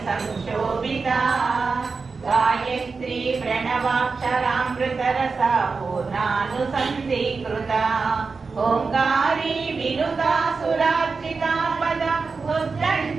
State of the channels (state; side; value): quieter; left; 4.6 dB